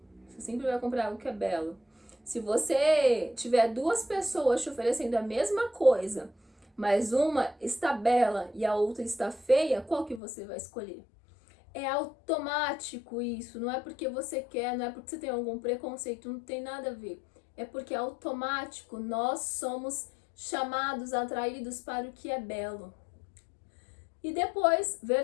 você sempre vai comprar algo que é belo. Se você tiver duas pessoas te oferecendo a mesma coisa, mas uma está bela e a outra está feia, qual que você vai escolher? É automático isso, não é porque você quer, não é porque você tem algum preconceito, não tem nada a ver. É porque é automático, nós somos chamados, atraídos para o que é belo. E depois,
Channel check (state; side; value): drops out; right; at 10.2 s